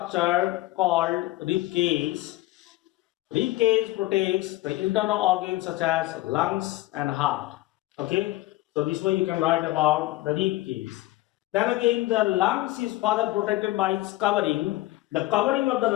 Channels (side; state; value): right; quieter; 17.8 dB